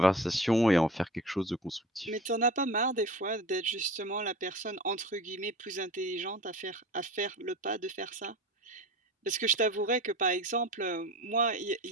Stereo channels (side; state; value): both; normal; correlation 0.36